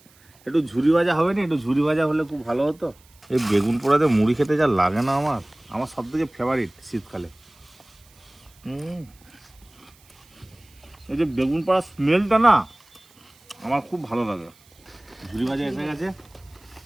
একটু ঝুরি ভাজা হবে না? একটু ঝুরি ভাজা হলে খুব ভালো হতো। এই বেগুন পোড়াতে মুড়ি খেতে যা লাগে না, আমার সব থেকে ফেভারিট শীতকালে। এই যে বেগুন পোড়ার স্মেলটা না আমার খুব ভালো লাগে। ঝুরি ভাজা এসে গেছে,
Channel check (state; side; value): noise; right; hiss, 29 dB below the sound